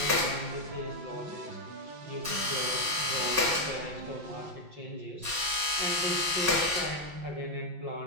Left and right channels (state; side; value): late; left; 5.4 ms